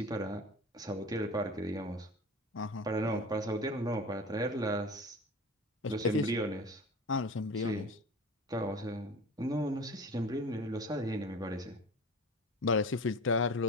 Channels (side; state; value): both; normal; correlation 0.34